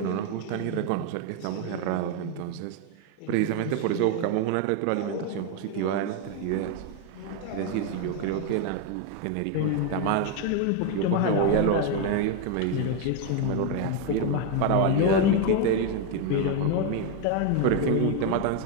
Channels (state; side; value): different; both; correlation 0.01